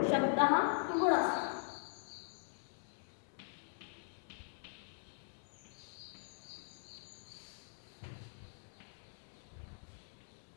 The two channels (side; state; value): right; silent; digital silence